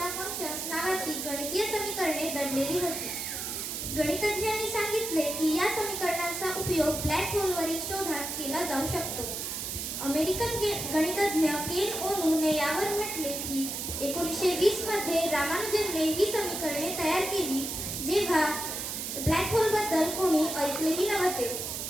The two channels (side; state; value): right; noise; hiss, 4 dB below the sound